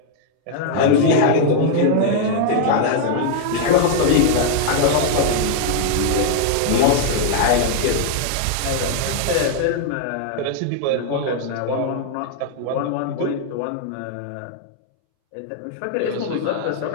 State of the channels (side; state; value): both; different; correlation 0.00